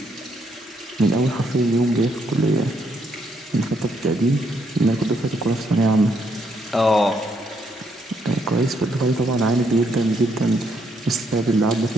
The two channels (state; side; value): normal; both; correlation 0.74